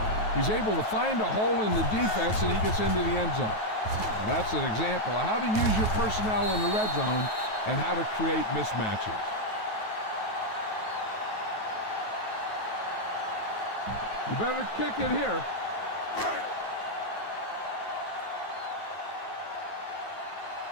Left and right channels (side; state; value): right; late; 9.3 ms